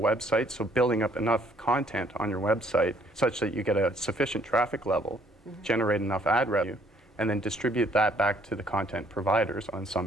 so building up enough content on your website such that you get a sufficient traffic level, generate enough ad revenue, and then distribute that back to the content providers on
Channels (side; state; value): both; normal; correlation 0.64